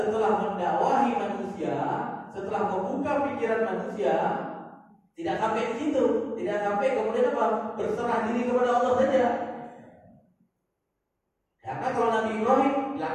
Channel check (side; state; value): both; identical; correlation 1.00